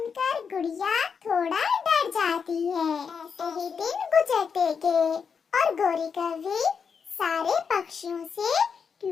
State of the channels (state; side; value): quieter; right; 6.2 dB